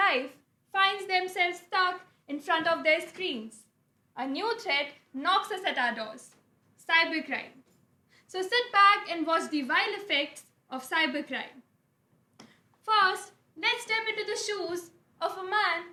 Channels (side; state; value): both; identical; correlation 1.00